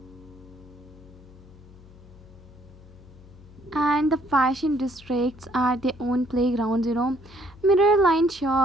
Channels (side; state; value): left; noise; hum, 21 dB below the sound